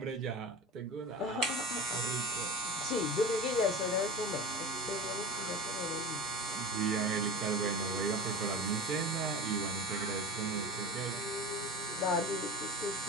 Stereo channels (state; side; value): normal; both; correlation 0.32